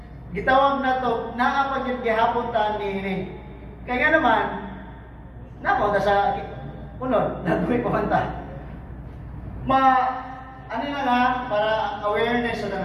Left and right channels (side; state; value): both; identical; correlation 1.00